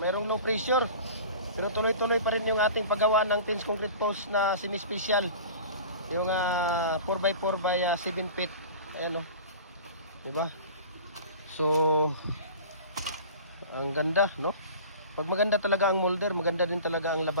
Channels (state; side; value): inverted; both; correlation -0.39